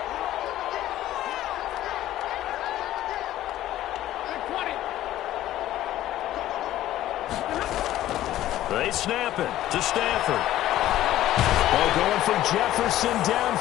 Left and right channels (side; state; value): right; quieter; 13.8 dB